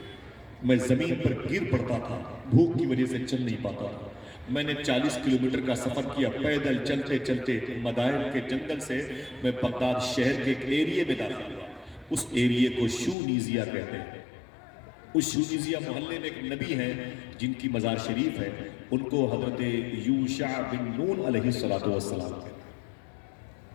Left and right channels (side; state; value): right; drops out; at 13.2 s